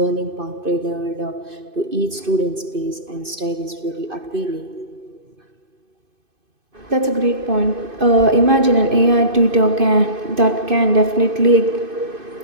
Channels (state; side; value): late; left; 2.5 ms